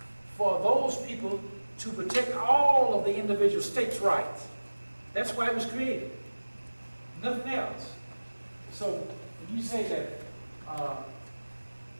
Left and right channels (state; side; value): inverted; both; correlation -1.00